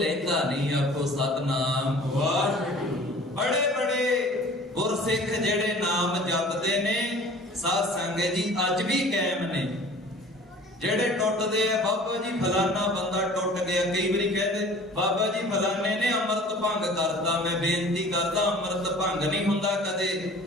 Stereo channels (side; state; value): both; normal; correlation 0.46